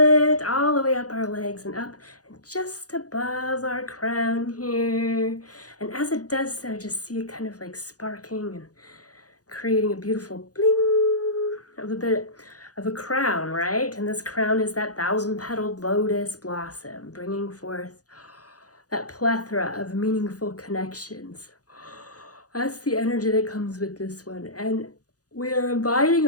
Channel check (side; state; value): right; late; 0.67 ms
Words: all the way up our legs and up and just above our crown here. And as it does so, just see it kind of like sparking and creating a beautiful bling of a bit of a crown, right? And this crown is that 1,000-petaled lotus blossom, bringing forth that plethora of meaningful connections. That's the energy that comes with this one. And we are inviting